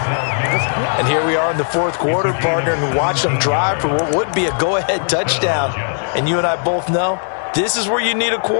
And here we are in the 4th quarter, partner, and watch them drive for what would be a go-ahead touchdown. And you and I both know this is where you need a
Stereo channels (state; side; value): silent; right; digital silence